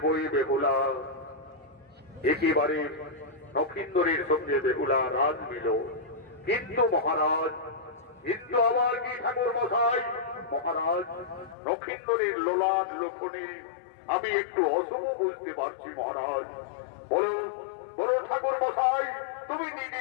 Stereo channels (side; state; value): right; drops out; at 11.6 s